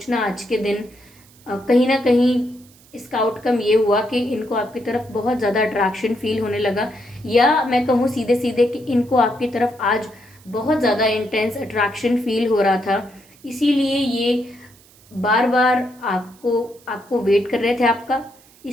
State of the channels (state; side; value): noise; right; hiss, 27 dB below the sound